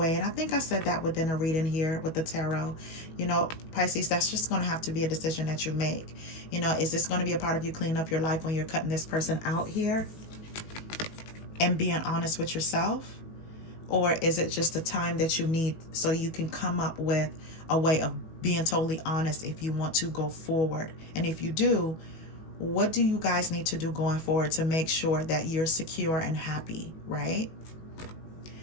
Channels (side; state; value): right; late; 18 ms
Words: And I think I said that within a reading here with the tarot. You know, Pisces, that's just going to have to be a decision that you make. You know, is this going to be a part of you cleaning up your life when you're cutting this person out here and being honest with yourself? Or is it just the time that you need so you can come up with a way of being totally honest if you want to go forward? And if you do, what do you guys need to do going forward to make sure that you're secure and happy, right?